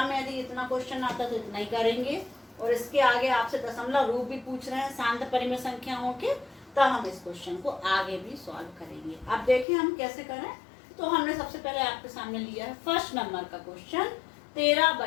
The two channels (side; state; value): right; drops out; at 9.7 s